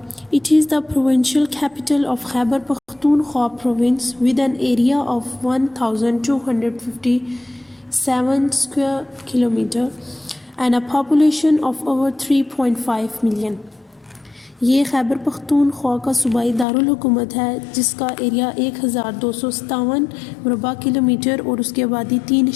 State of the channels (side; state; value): right; drops out; at 16.7 s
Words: it is the provincial capital of Khyber Pakhtunkhwa province with N area of 1257 square kilometre and a population of over 3.5 million. یہ خیبر پختونخوا کا صوبائی دارالحکومت ہے جس کا ایریا 1257 مربع کلومیٹر اور اس کی آبادی